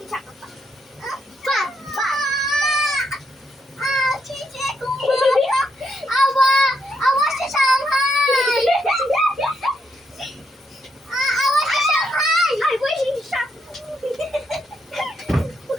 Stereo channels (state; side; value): normal; both; correlation 0.78